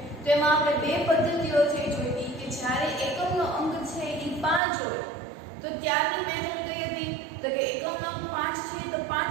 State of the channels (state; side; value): drops out; left; at 4.6 s